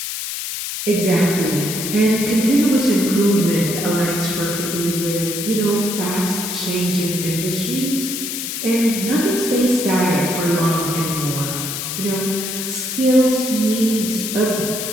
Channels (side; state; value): left; noise; hiss, 5 dB below the sound